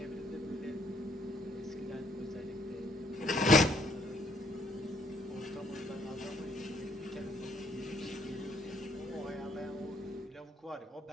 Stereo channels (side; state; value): both; normal; correlation 0.68